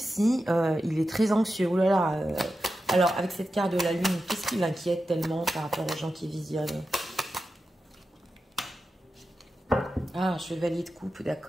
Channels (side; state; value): both; normal; correlation 0.91